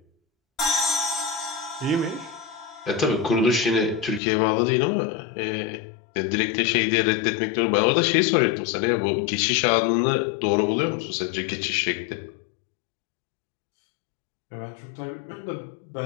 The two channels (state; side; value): drops out; right; at 4.2 s